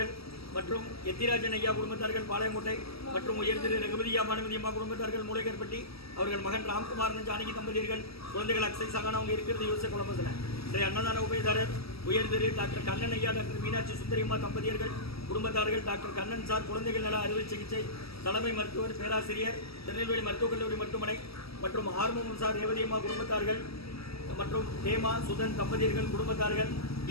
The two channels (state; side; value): late; right; 0.76 ms